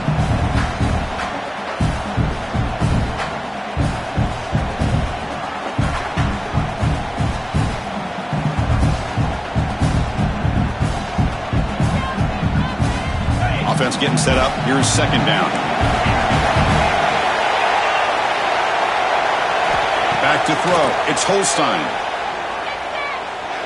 Offense getting set up. Here's second down. Back to throw. It's Holstein.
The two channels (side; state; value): both; identical; correlation 1.00